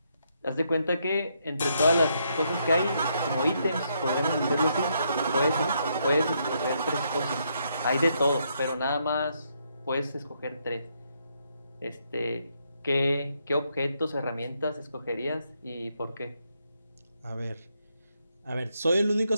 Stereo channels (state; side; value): inverted; both; correlation -0.76